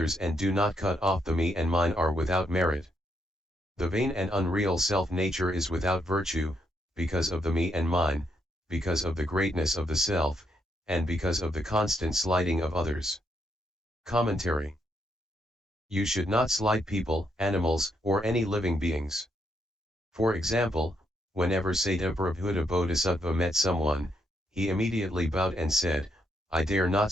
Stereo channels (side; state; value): both; normal; correlation 0.77